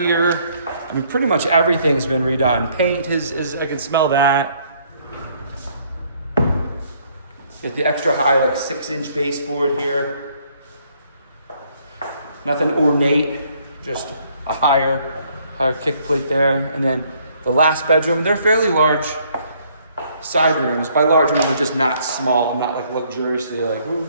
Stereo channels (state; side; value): inverted; both; correlation -0.66